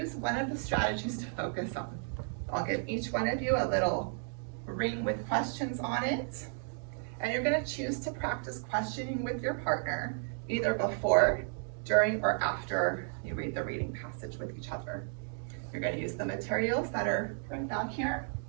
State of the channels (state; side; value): silent; left; 55 dB below the other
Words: one of the strategies to focus on. I'll give each one of you a little ring with questions on it, and you're going to choose to practice questioning with your partner either before, during, or after you read the reading passage with each other. You're going to use the materials that are right down here,